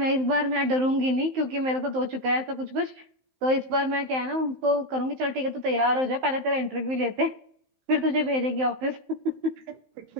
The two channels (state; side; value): late; left; 15 ms